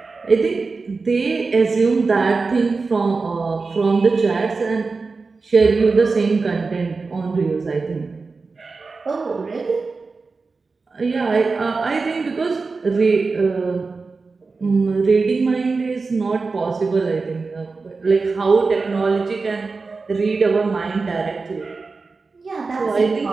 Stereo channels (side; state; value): left; quieter; 4.2 dB